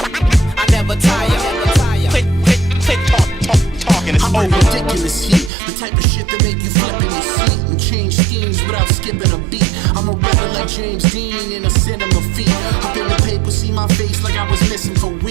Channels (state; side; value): drops out; left; at 5.5 s